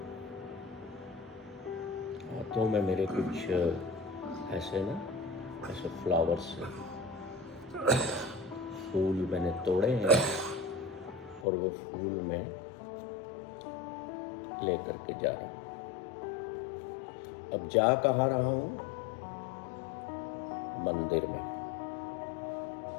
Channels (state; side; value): drops out; right; at 11.5 s